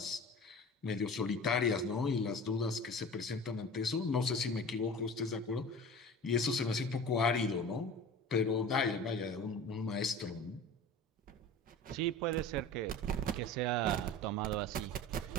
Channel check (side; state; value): both; normal; correlation 0.37